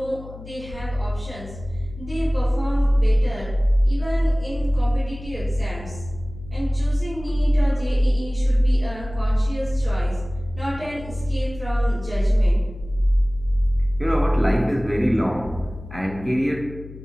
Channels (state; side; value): noise; left; hum, 15 dB below the sound